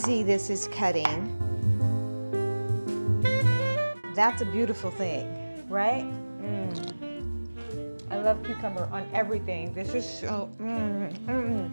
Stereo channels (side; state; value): both; inverted; correlation -1.00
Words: this is cutting. That's a beautiful thing, right? I love cucumber on everything. This is so,